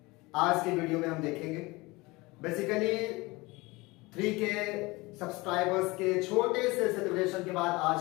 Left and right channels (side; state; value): right; quieter; 23.1 dB